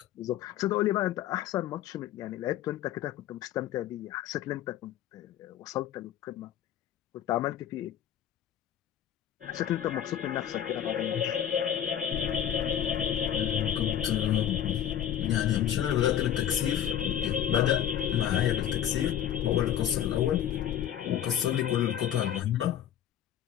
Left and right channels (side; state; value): right; quieter; 10.5 dB